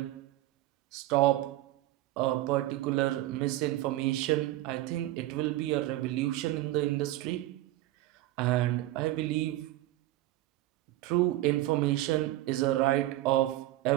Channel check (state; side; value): quieter; left; 16.2 dB